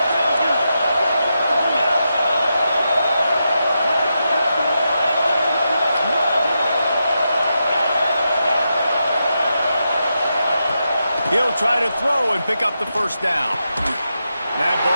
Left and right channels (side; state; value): both; inverted; correlation -0.86